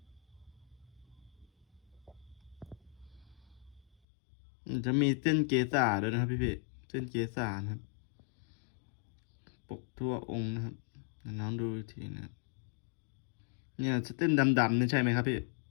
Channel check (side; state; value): right; drops out; at 3.9 s